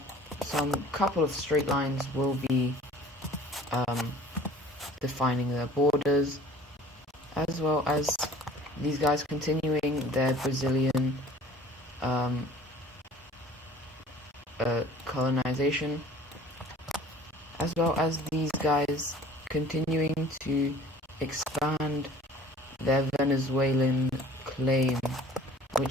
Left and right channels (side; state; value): both; normal; correlation 0.48